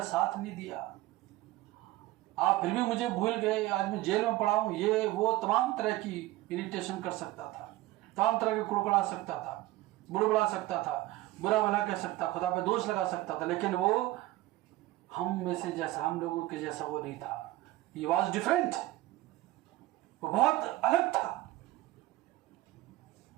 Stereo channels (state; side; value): quieter; left; 17.4 dB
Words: साथ नहीं दिया, आप फिर भी मुझे भूल गए, आज मैं जेल में पड़ा हूं। ये वो तमाम तरह की इरिटेशन कर सकता था, तमाम तरह के कुड़कुड़ा सकता था, बुड़बुड़ा सकता था, बुरा भला कह सकता, खुदा पे दोष लगा सकता था। लेकिन वो हम में से जैसा, हम लोगों के जैसा वो नहीं था। He was different. वो बहुत अलग था।